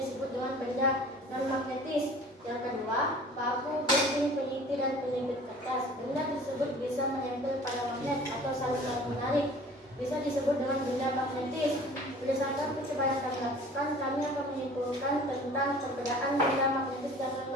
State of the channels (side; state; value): both; normal; correlation 0.46